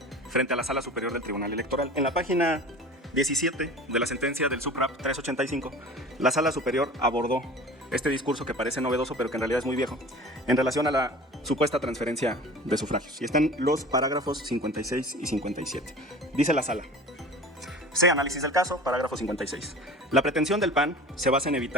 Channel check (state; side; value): normal; both; correlation 0.39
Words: frente a la Sala Superior del Tribunal Electoral. En la página 17 de la sentencia del SUPRAP 385, la Sala Superior abordó este discurso que parece novedoso pero que en realidad es muy viejo en relación a la supuesta transferencia de sufragios. Y están los parágrafos 56 y 57. Dice la Sala: C. Análisis del caso, parágrafo 56. La pretensión del PAN se basa en